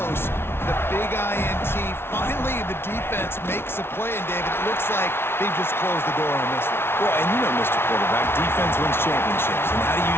The big INT, finally the defense makes a play, and David, it looks like they just closed the door on this one. Well, and you know, Mr. Quarterback, defense wins championships. And how do you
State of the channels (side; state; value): right; late; 0.12 ms